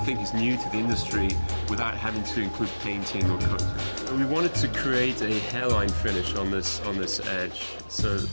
is new to the industry without having to include painting or coating. We wanted to create a hairline finish on this edge. So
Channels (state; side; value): inverted; both; correlation -1.00